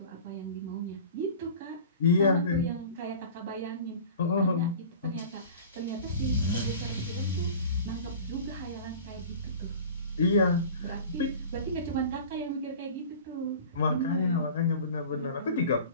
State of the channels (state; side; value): inverted; both; correlation -0.39